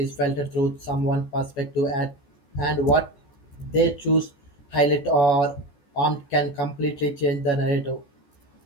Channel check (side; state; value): right; late; 14 ms